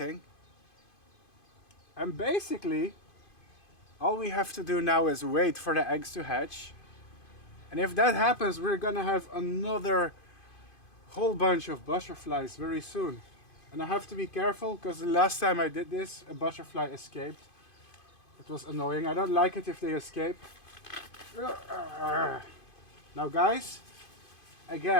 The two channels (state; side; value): late; right; 2.5 ms